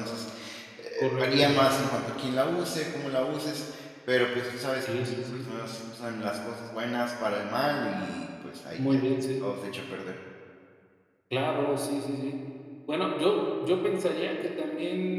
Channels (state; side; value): identical; both; correlation 1.00